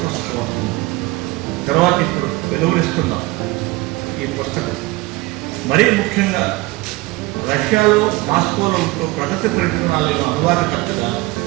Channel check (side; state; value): left; quieter; 21.1 dB